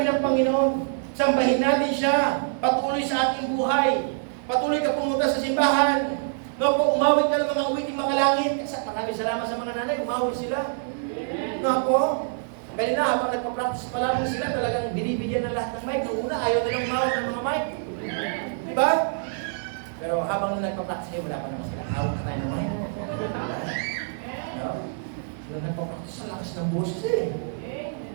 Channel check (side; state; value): left; silent; digital silence